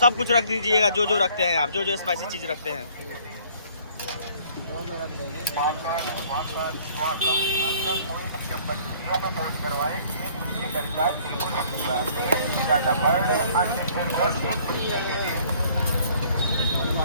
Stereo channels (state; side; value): inverted; both; correlation -0.57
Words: सब कुछ रख दीजिएगा जो जो रखते हैं आप, जो जो स्पाइसी चीज रखते हैं।